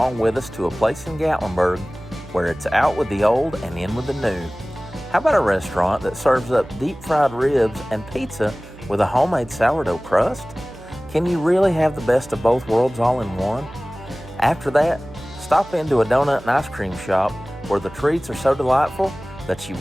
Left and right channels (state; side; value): noise; right; hum, 20 dB below the sound